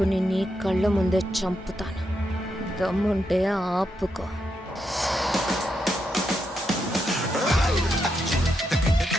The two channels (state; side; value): normal; both; correlation 0.82